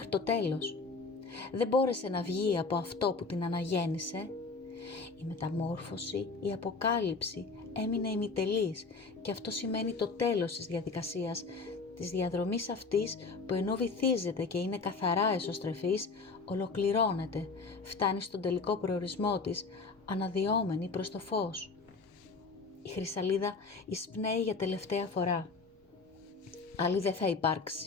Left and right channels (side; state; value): right; quieter; 4.2 dB